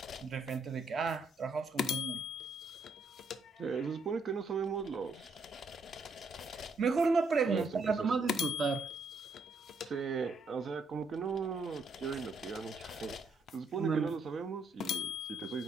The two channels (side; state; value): left; quieter; 3.0 dB